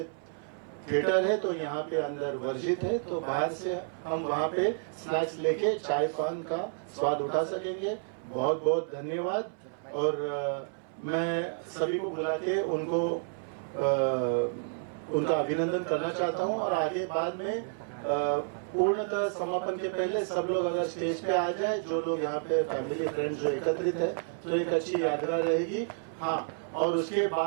थिएटर है तो यहाँ पे अंदर वर्जित है, तो बाहर से हम वहाँ पे स्नैक्स लेके चाय पान का स्वाद उठा सकेंगे। बहुत बहुत धन्यवाद। और मैं सभी को बुला के उनको उनका अभिनंदन करना चाहता हूँ। और आगे बाद में पूर्णतः समापन के पहले सब लोग अगर स्टेज पे आ जाए, जो लोग यहाँ पे फैमिली फ्रेंड्स जो एकत्रित है, तो एक अच्छी यादगार रहेगी। हाँ, और उसके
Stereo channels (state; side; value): silent; left; 58 dB below the other